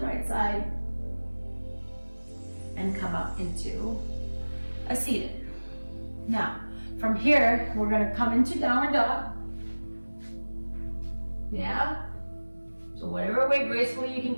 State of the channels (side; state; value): both; inverted; correlation -1.00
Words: side. And come up into a seated. Now, from here, we're going to come into downward dog. Yeah? So whatever way gracefully you can